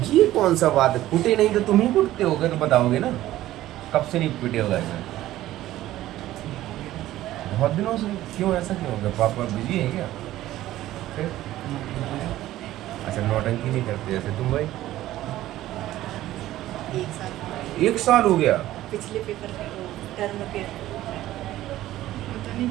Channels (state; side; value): quieter; left; 14.7 dB